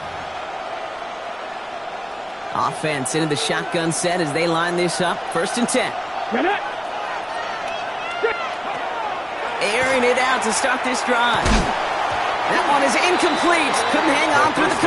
line. Offense into the shotgun set as they line this up. First and 10. Airing it out to start this drive. That one is incomplete. Couldn't hang on through the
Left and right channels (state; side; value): identical; both; correlation 1.00